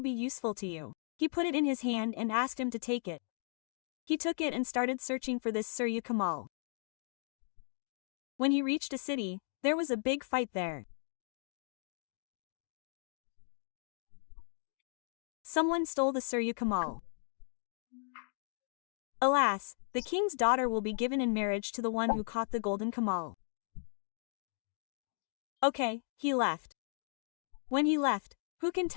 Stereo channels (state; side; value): silent; right; digital silence